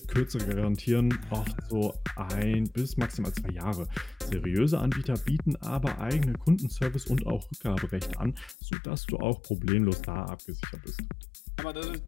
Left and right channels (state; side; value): drops out; right; at 8.6 s